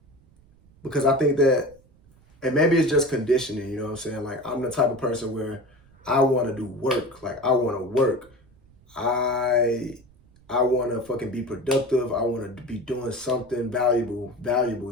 because I think that, and maybe it's just conditioning, you know what I'm saying? Like, I'm the type of person where I want to do work. Like, I want to work. I want to fucking be productive. I want to be doing something valuable,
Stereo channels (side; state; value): right; noise; rumble, 29 dB below the sound